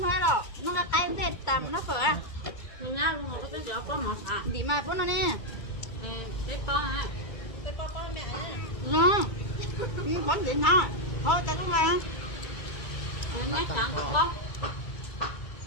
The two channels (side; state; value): right; late; 2.2 ms